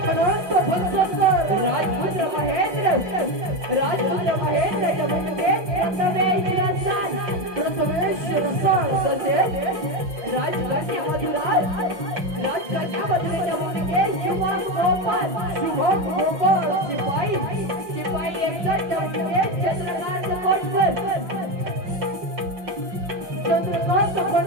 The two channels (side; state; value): left; late; 5.6 ms